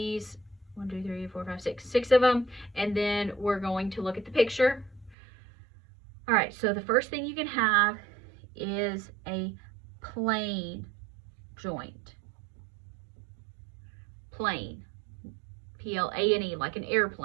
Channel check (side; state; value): left; drops out; at 5.2 s